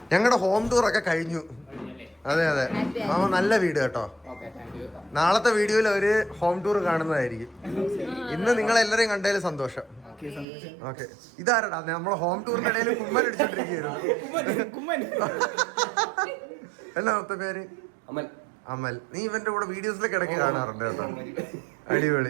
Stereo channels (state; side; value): drops out; left; at 10.5 s